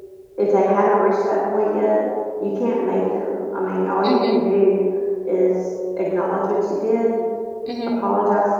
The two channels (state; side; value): identical; both; correlation 1.00